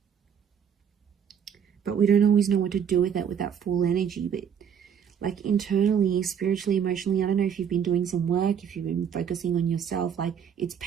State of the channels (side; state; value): left; quieter; 7.9 dB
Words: but we don't always know what to do with that full energy. But like internally, spiritually, emotionally, I don't know if you've been doing some work, if you've been focusing on yourself, like it's